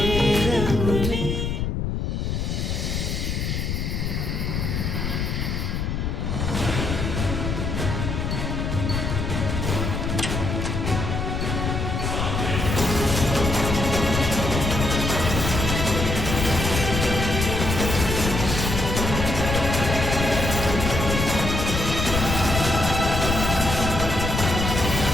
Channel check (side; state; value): left; noise; rumble, 2 dB below the sound